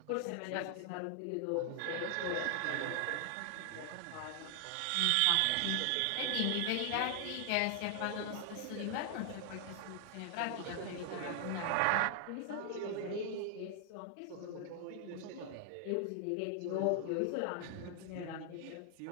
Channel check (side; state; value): both; different; correlation 0.00